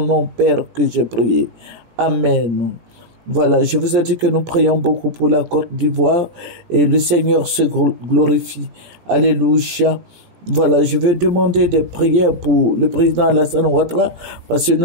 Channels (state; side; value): late; left; 17 ms